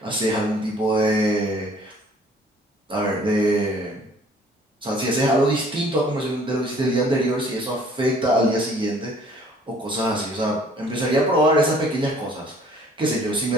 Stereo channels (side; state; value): both; normal; correlation 0.56